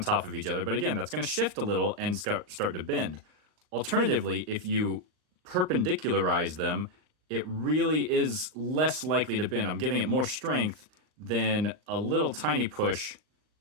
of each other, but again, that's going to shift a little and start to bend. Alternatively, if you perpendicularize them, it really is less likely to bend. I'm giving it more strength than a little tiny push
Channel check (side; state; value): left; late; 39 ms